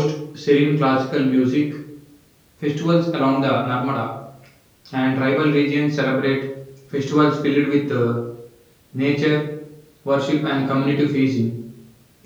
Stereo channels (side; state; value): both; identical; correlation 1.00